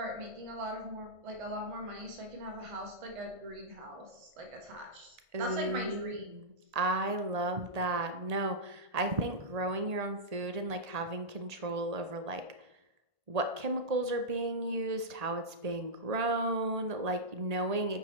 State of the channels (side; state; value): left; late; 1.8 ms